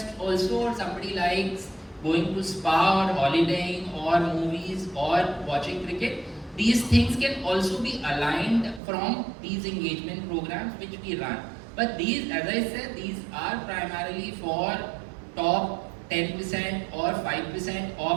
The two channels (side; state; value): left; drops out; at 8.8 s